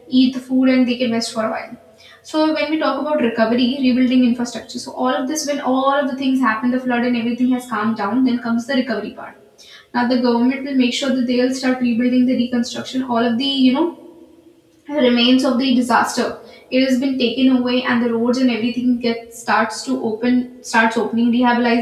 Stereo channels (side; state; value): both; identical; correlation 1.00